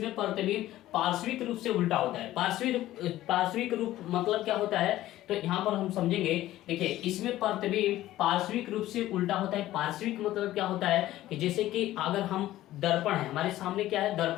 प्रतिबिंब पार्श्विक रूप से उल्टा होता है। पार्श्विक रूप मतलब क्या होता है, तो यहाँ पर हम समझेंगे। देखिए इसमें प्रतिबिंब पार्श्विक रूप से उल्टा होता है। पार्श्विक मतलब क्या होता है कि जैसे कि अगर हम दर्पण है, हमारे सामने क्या है,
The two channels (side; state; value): right; quieter; 14.8 dB